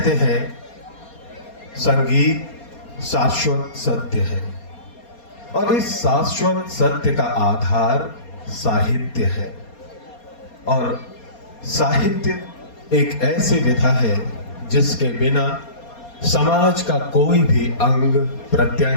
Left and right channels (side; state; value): right; late; 4.3 ms